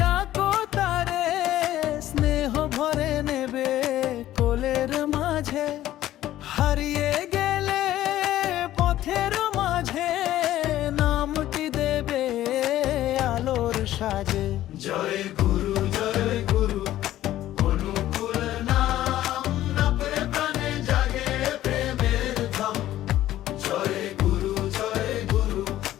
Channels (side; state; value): right; quieter; 13.7 dB